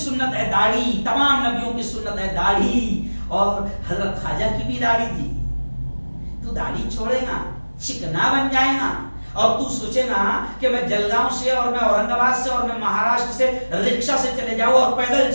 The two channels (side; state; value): both; inverted; correlation -1.00